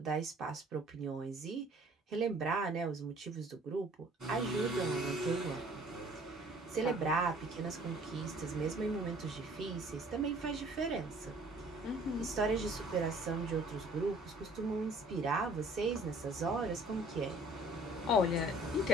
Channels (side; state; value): both; normal; correlation 0.55